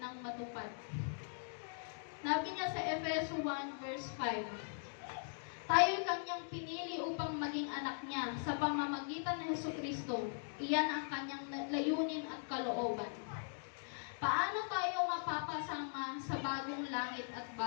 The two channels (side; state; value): right; silent; digital silence